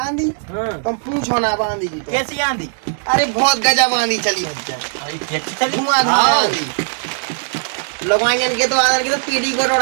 हाँ तुम पूछो ना आंधी की तो। कैसी आंधी? अरे बहुत गजब आंधी चली भज्जा, अरे कैसी चली? धुआंधार आंधी। लोगाइन के तो आदर के तो पीढ़ी को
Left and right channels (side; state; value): left; silent; digital silence